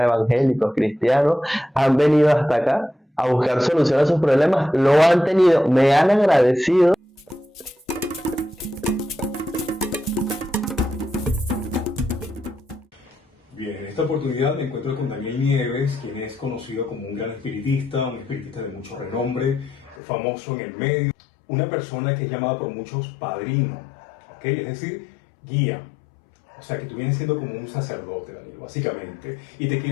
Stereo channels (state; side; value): drops out; right; at 20.0 s